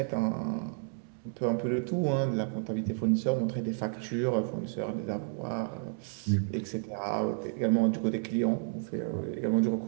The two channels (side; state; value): left; silent; digital silence